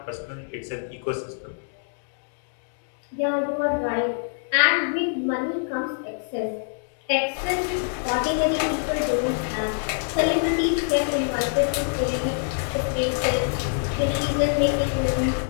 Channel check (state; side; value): silent; right; digital silence